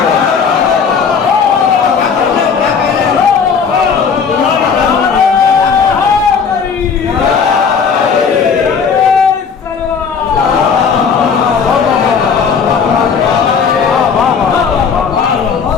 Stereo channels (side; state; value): right; quieter; 6.1 dB